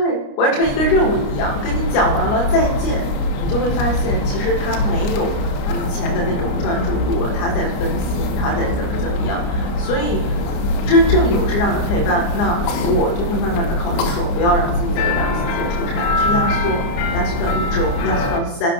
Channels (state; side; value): late; right; 29 ms